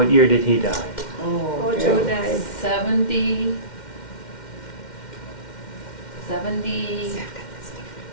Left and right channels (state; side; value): late; right; 2.1 ms